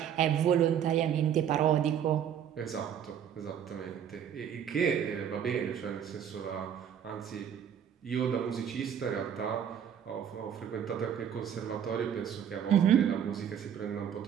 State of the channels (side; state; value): left; quieter; 8.8 dB